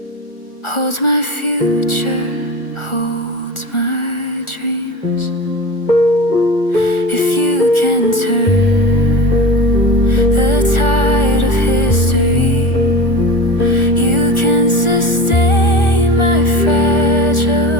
holds my future, holds my dreams. If you can turn the tide of history, you can sustain my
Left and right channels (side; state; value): right; late; 1.4 ms